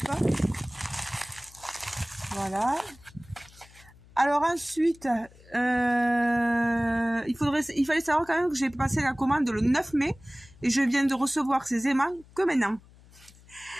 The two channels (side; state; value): left; noise; hum, 25 dB below the sound